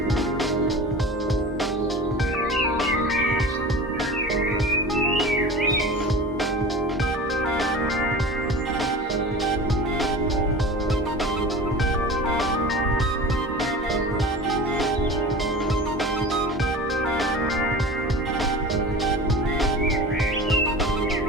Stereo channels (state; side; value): normal; both; correlation 0.35